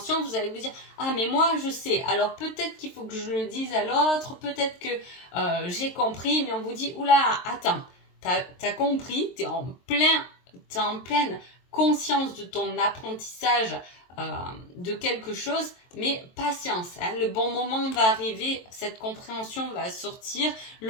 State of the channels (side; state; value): right; late; 23 ms